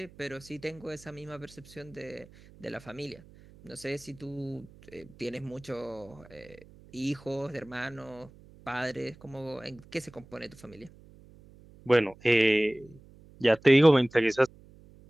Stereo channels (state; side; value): noise; right; hum, 23 dB below the sound